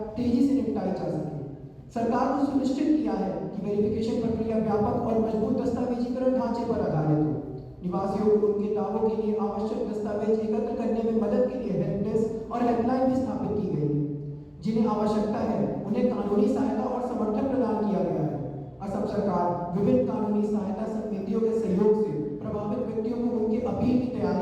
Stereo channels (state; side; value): identical; both; correlation 1.00